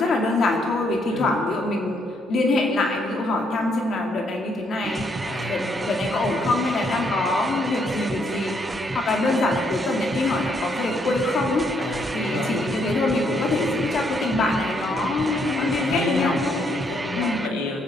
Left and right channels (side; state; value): both; normal; correlation 0.72